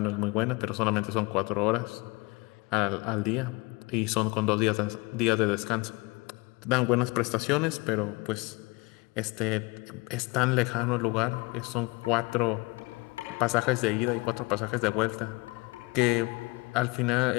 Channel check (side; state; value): right; quieter; 25.7 dB